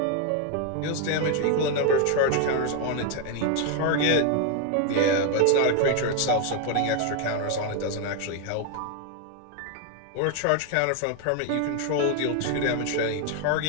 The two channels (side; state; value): both; different; correlation 0.01